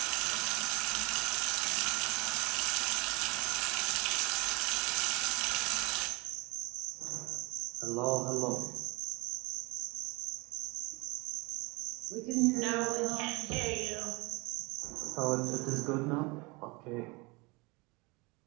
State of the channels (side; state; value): left; quieter; 26.2 dB